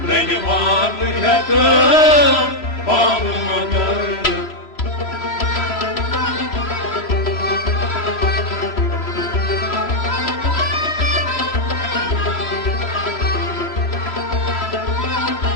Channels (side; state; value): right; late; 3.0 ms